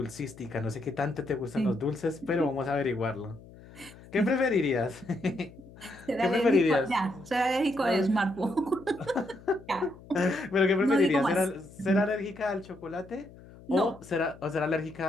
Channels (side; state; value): left; noise; hum, 20 dB below the sound